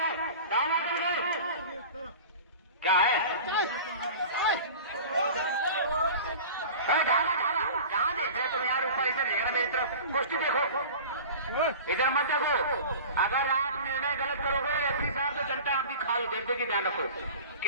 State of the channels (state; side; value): inverted; both; correlation -0.37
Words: दाव मार के दिखाए। क्या है जहाँ देख रहे तुम यार, ऊपर इधर देखना मेरी तरफ, कुश्ती देखो, इधर मत देखो। अगर आप निर्णय गलत करोगे रेफरी साहब तो जनता आपकी खाल देख देगी, ध्यान रखो।